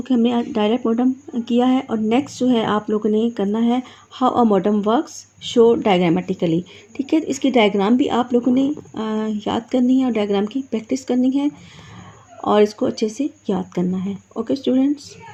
कि हमने डायरेक्ट मॉडेम किया है। और नेक्स्ट जो है आप लोगों ने करना है how a modem works, show diagrammatically, ठीक है। इसकी डायग्राम भी आप लोगों ने याद करनी है और डायग्राम की प्रैक्टिस करनी है और इसको अच्छे से याद करना है। ओके स्टूडेंट्स,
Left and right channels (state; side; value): identical; both; correlation 1.00